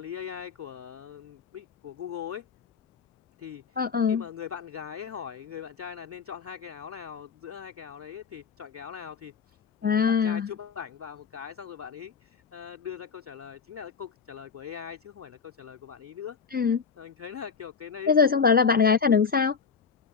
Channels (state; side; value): quieter; right; 5.8 dB